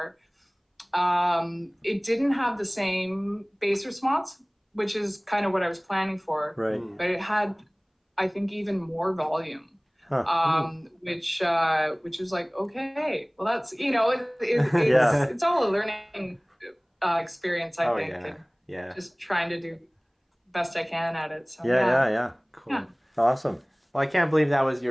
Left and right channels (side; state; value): both; identical; correlation 1.00